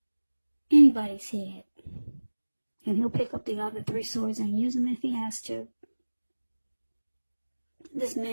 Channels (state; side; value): inverted; both; correlation -1.00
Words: anybody's head. And he'll pick up the other 3 swords and use them if he has to. This